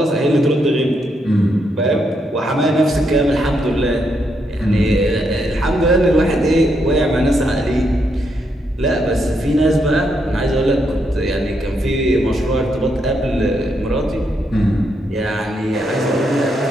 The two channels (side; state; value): both; normal; correlation 0.79